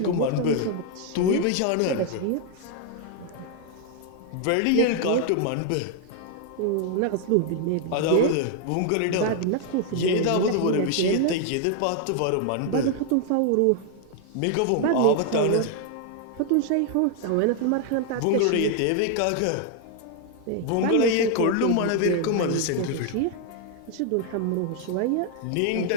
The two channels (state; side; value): different; both; correlation 0.00